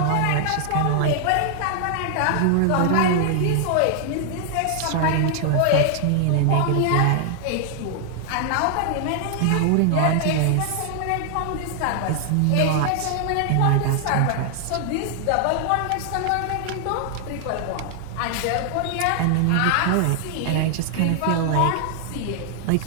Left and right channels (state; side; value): different; both; correlation 0.00